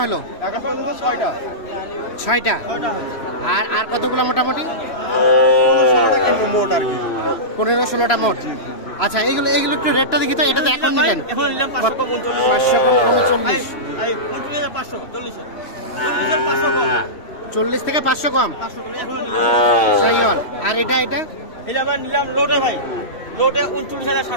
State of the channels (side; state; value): right; late; 3.0 ms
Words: হলো? এখন পর্যন্ত 6টা। 6টা। আর আর কতগুলো মোটামুটি? 15-16টা মোট আর কি। 15-16টা মোট। আচ্ছা, এগুলো একটু রেটটা দেখি তো। এটা তো এখন নিলেন 539। 40 থেকে 500 কম শাহিওয়াল। আর এটা নিলাম লোটে ভাই, লোটে